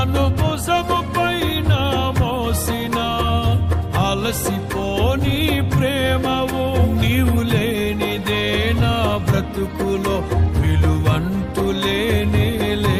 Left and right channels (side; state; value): both; identical; correlation 1.00